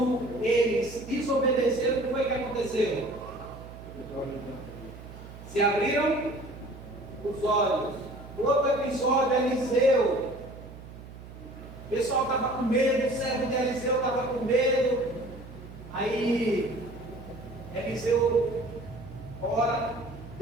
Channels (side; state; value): right; noise; hum, 15 dB below the sound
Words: eles desobedeceram, o que foi que aconteceu? Se abriram os olhos. Outro episódio, Eliseu. O pessoal estava com medo, o servo de Eliseu estava com medo. Aí, Eliseu ora,